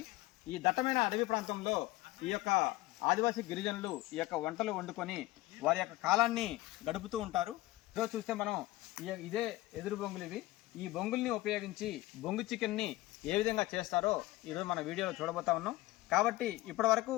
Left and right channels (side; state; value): right; quieter; 18.3 dB